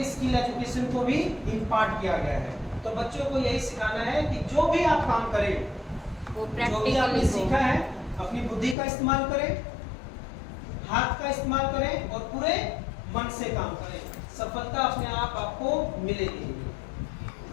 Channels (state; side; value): drops out; right; at 8.8 s